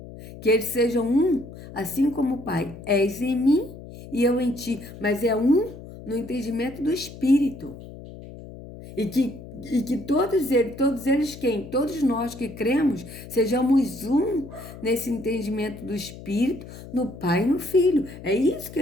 que eles sejam um, assim como o Pai, és em mim e eu em ti, mas é um no entendimento do Espírito. E que todos eles quem? Todos nós que cremos, sejamos um nesse entendimento do Espírito, no Pai e no Filho. É isso que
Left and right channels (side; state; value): left; noise; hum, 15 dB below the sound